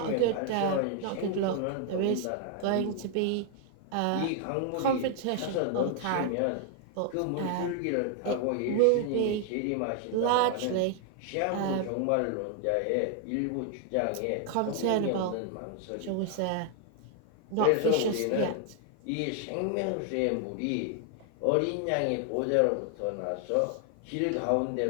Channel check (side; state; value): both; different; correlation 0.00